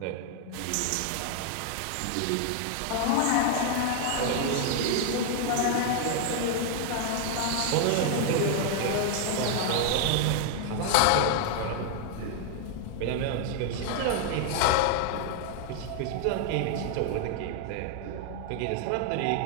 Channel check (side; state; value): both; different; correlation 0.00